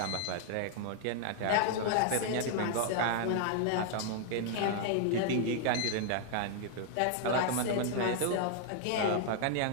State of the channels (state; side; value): different; both; correlation -0.01